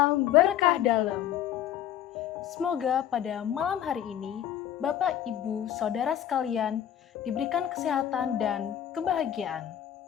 berkah dalam. Semoga pada malam hari ini, Bapak, Ibu, Saudara sekalian diberikan kesehatan dan kebahagiaan.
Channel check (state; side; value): quieter; right; 10.7 dB